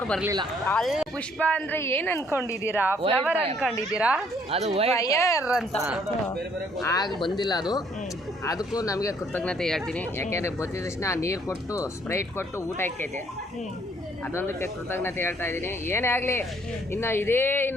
ಬರಲಿಲ್ಲ. ಅಲ್ಲಿ ಪುಷ್ಪ ಅಂದ್ರೆ ಏನ್ ಅನ್ಕೊಂಡಿದ್ದೀರಾ? ಫ್ಲವರ್ ಅನ್ಕೊಂಡಿದ್ದೀರಾ? ಅದು ಫೈರ್ ಅಂತ ಆಗ ಬಂದಿಲ್ಲ. ಅದಕ್ಕೂ ನಮಗೆ ಕೃತಜ್ಞತೆ ಹೇಳ್ತೀನಿ. ಯಾಕೆಂದರೆ ಬಂದಿದ ತಕ್ಷಣ ನೀರು ಕೊಟ್ಟು ಸ್ಪ್ರೈಟ್ ಕೊಟ್ಟು ಊಟ ಇಕ್ಕೈತೆ, ಅದೊಂದಕ್ಕೆ ಕೃತಜ್ಞತೆ ಹೇಳ್ತಾ ಇದ್ದೀನಿ. ಏನೇ ಆಗಲಿ, ಇನ್ನು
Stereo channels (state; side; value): normal; both; correlation 0.64